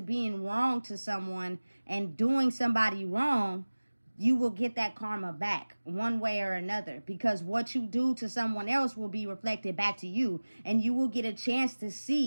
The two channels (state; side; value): inverted; both; correlation -1.00